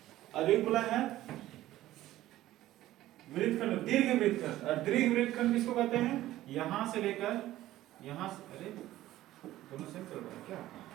अब एक बोला है वृत्तखंड, दीर्घ वृत्तखंड। और दीर्घ वृत्तखंड किसको कहते हैं, यहां से लेकर यहां से, अरे दोनों सेम चल रहा है क्या,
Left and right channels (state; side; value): quieter; left; 14.9 dB